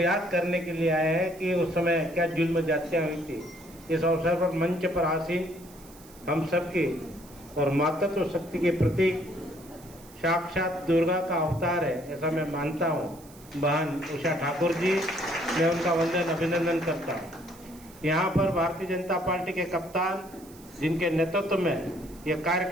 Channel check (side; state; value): right; noise; hiss, 23 dB below the sound